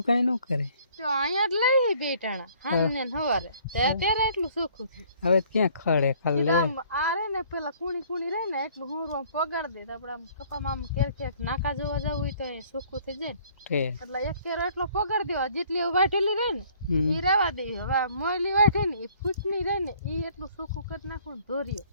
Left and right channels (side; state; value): both; inverted; correlation -0.58